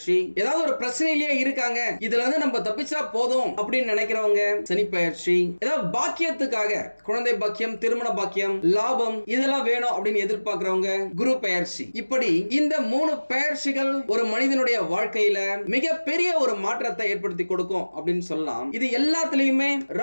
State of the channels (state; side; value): inverted; both; correlation -1.00